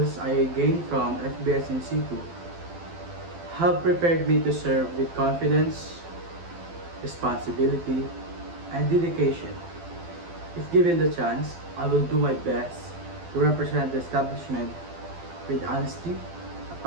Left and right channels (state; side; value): late; left; 12 ms